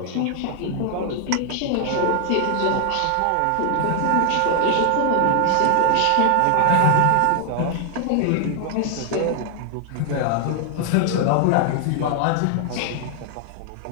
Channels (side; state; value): both; different; correlation 0.00